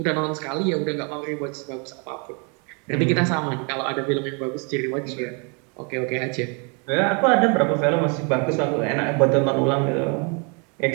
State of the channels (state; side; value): quieter; left; 34.7 dB